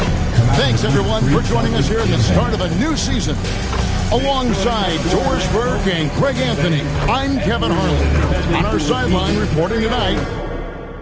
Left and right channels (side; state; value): both; identical; correlation 1.00